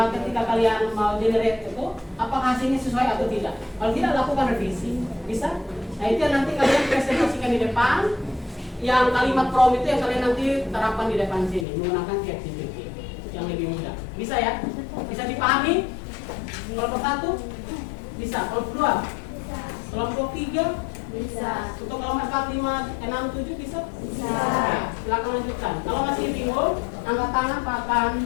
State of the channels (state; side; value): drops out; right; at 11.7 s